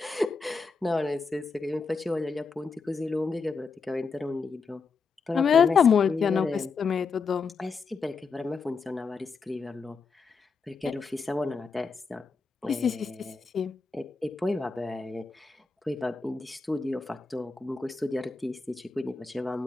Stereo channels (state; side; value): quieter; right; 4.8 dB